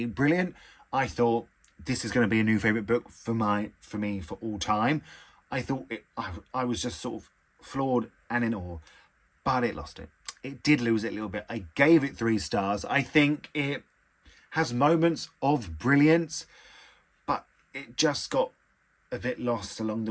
brilliant. I thought this is going to be a new favourite book for me for all time. I thought I was just sort of floored and in awe, but it lost it. It did lose it a little bit. I gave it 3 stars. I think it has moments of brilliance, but it just got a bit lost along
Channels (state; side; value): identical; both; correlation 1.00